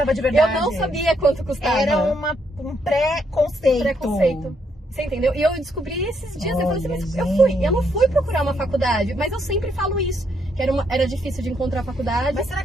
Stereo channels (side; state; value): both; normal; correlation 0.75